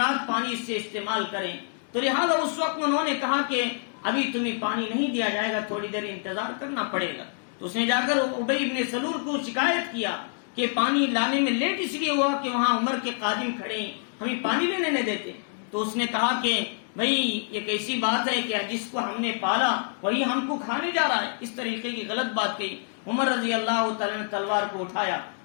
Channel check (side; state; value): right; silent; digital silence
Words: پانی سے استعمال کریں. تو لہٰذا اس وقت انہوں نے کہا کہ ابھی تمہیں پانی نہیں دیا جائے گا، تھوڑی دیر انتظار کرنا پڑے گا. تو اس نے جا کر ابی بن سلول کو شکایت کیا کہ پانی لانے میں لیٹ اس لیے ہوا کہ وہاں عمر کے قادم کھڑے ہیں، ہمیں پانی لینے نہیں دیتے. تو اس نے کہا کہ بھئی یہ کیسی بات ہے کہ جس کو ہم نے پالا وہی ہم کو کھانے جا رہا ہے. اس طریقے کی غلط بات کہی. عمر رضی اللہ تعالیٰ نے تلوار کو اٹھایا،